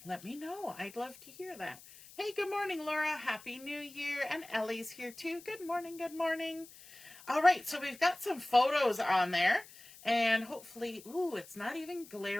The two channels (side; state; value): left; noise; hiss, 20 dB below the sound